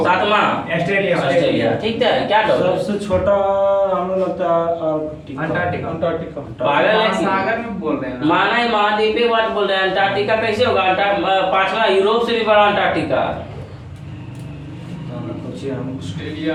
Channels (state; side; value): identical; both; correlation 1.00